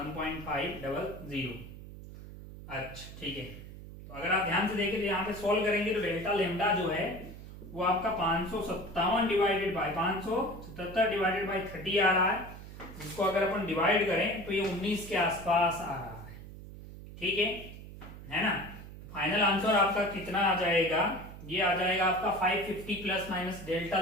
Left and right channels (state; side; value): noise; right; hum, 14 dB below the sound